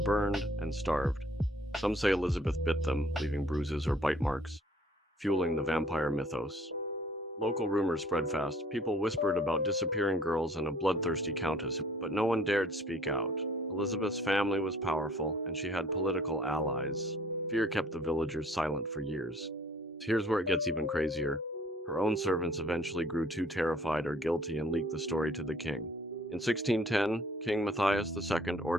and starved. Some say Elizabeth bit them, leaving bruises or bite marks, fueling the vampire mythos. Local rumors spread fast. People whispered about disappearing girls and a bloodthirsty countess, but no one dared speak out. Elizabeth's family was powerful, and she had political allies. Fear kept the villagers silent for years. Here's where it gets even crazier. Her own servants eventually grew too terrified or guilty and leaked the story to the king. In 1610, King Matthias II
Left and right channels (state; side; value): normal; both; correlation 0.57